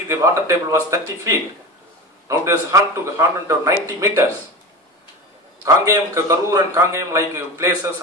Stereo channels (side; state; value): both; normal; correlation 0.28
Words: the water table was 30 feet. Now it is 190 meters. Kangayam, Karur and Kangayam like places